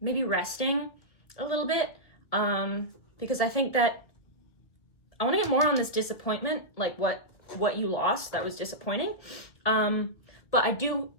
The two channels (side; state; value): right; late; 1.8 ms